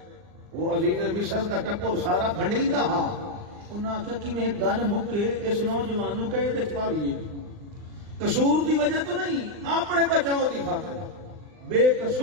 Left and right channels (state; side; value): late; left; 39 ms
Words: وہ عزیز مصر دا ٹپر سارا بھنڈیندا ہا انہاں آخیا کہ میں گل مکے اس نوجوان نو کہے تے پاویے قصور دی وجہ تو نہیں اپنے بچاؤ دی خاطر بے